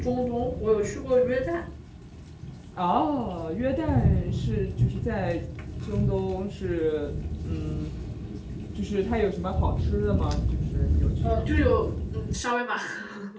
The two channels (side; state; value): both; identical; correlation 1.00